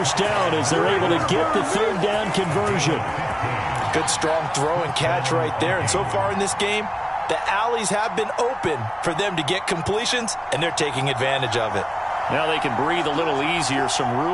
down as they're able to get the 3rd down conversion. Good strong throw and catch right there. And so far in this game, The alleys have been open for them to get completions, and they're taking advantage of it. Now they can breathe a little easier, some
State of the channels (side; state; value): both; identical; correlation 1.00